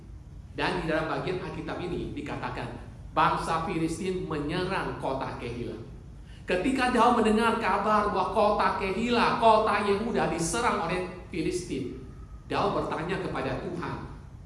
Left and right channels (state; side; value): identical; both; correlation 1.00